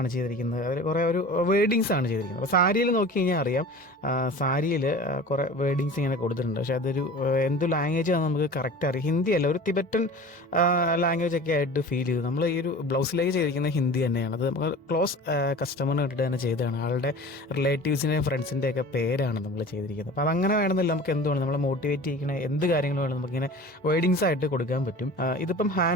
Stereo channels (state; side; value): normal; both; correlation 0.39